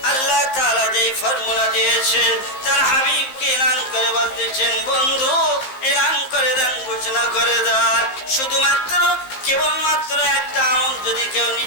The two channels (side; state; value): right; late; 15 ms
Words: আল্লাহ তাআলা যেই ফর্মুলা দিয়েছেন, তার হাবিবকে এলান করে বলতেছেন, বন্ধু এলান করে দেন, ঘোষণা করে দেন। শুধুমাত্র কেবলমাত্র একটা আমল যদি কেউ